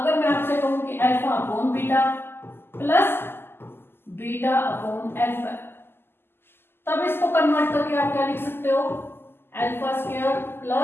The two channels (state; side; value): late; right; 0.11 ms